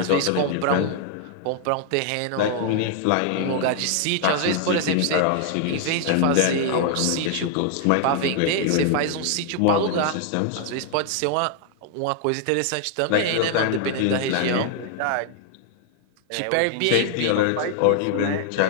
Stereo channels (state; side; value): different; both; correlation 0.00